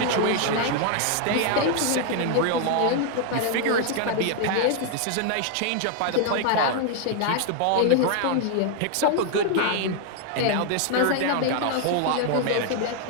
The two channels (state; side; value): different; both; correlation 0.00